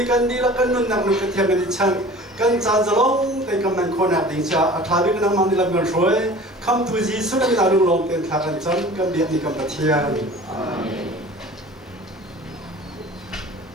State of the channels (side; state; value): both; normal; correlation 0.43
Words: dilakan nun nak nukat yang ngicang kan zanzalong tay kaman konak dingcha athabi kan mang dilam kan shoy kam tuji sudah minalung long ten thakan chan kan biak ni kam patian amin